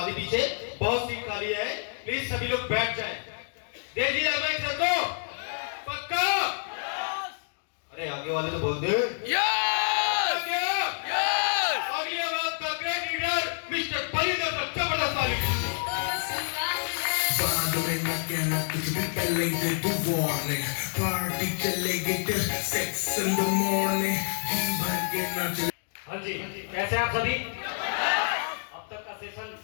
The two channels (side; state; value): right; silent; digital silence